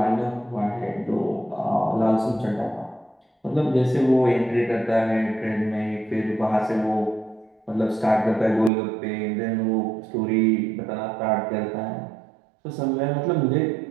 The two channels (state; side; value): drops out; left; at 8.7 s